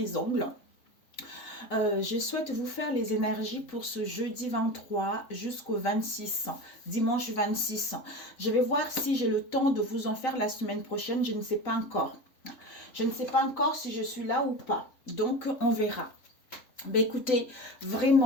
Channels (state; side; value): late; right; 3.5 ms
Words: ongles. Je souhaite vous faire les énergies pour ce jeudi 23 jusqu'au 26, dimanche 26. Je vais voir si j'ai le temps de vous en faire la semaine prochaine, je ne sais pas encore. Je ne sais pas encore si je suis là ou pas, donc on verra. Ben écoutez,